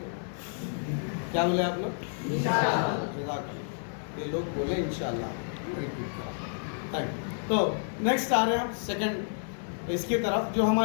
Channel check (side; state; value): right; silent; 55 dB below the other